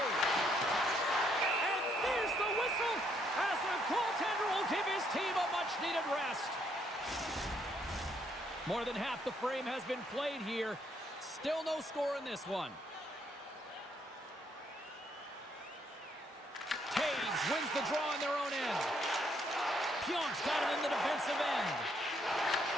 And there's the whistle as the goaltender will give his team a much-needed rest. More than half the frame has been played here. Still no score in this one. Taves wins the draw in their own end. Pionk's got it in the defensive end.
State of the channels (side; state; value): both; normal; correlation 0.71